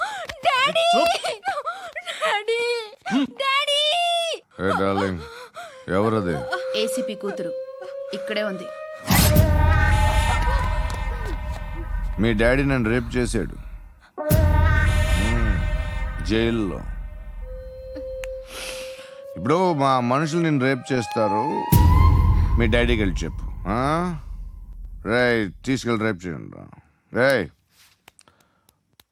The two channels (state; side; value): identical; both; correlation 1.00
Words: డాడీ చూప్. Daddy daddy. ఏ డార్లింగ్, ఎవరది? ఏసీపీ కూతురు ఇక్కడే ఉంది. మీ డాడీ నన్ను రేప్ చేశాడు జైల్లో. ఇప్పుడు మా మనుషులు నేను రేప్ చేస్తారు, మీ డాడీకి వెళ్ళి చెప్పు. రేయ్, తీసుకెళ్ళి రేప్ చేయండి. రేయ్,